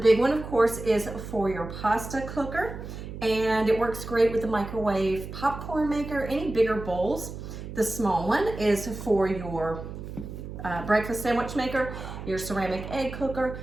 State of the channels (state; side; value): noise; right; hum, 10 dB below the sound